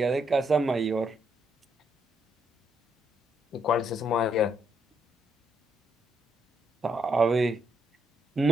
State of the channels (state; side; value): normal; both; correlation 0.75